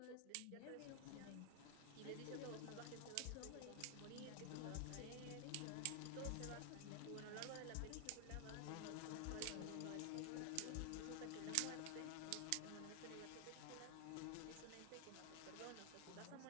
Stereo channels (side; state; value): both; different; correlation 0.00